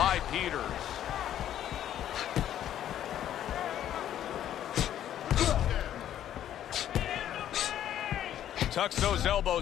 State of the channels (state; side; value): quieter; right; 11.1 dB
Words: Peters. Tucks those